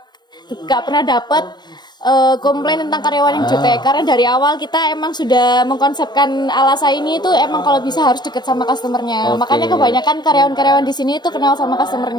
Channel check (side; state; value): right; late; 0.21 ms